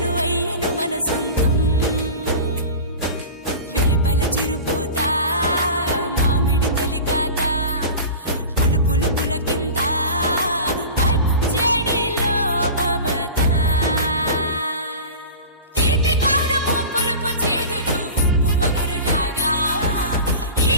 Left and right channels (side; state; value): both; inverted; correlation -0.33